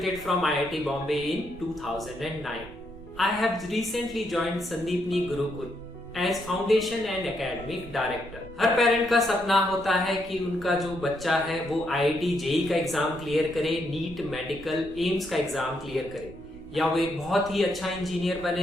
from IIT Bombay in 2009. I have recently joined Sandeepni Gurukul as Foundation and Academic Director. Her parent का सपना होता है कि उनका जो बच्चा है वो IIT जेई का एग्जाम क्लियर करे, नीट मेडिकल एम्स का एग्जाम क्लियर करे या वो एक बहुत ही अच्छा इंजीनियर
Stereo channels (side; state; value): right; noise; rumble, 18 dB below the sound